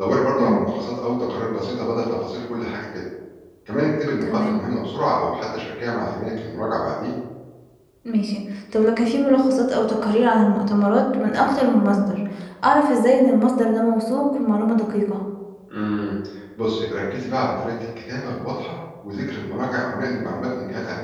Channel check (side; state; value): both; identical; correlation 1.00